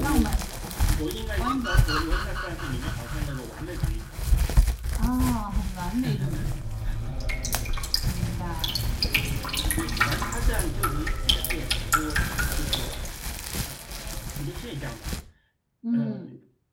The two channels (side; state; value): both; identical; correlation 1.00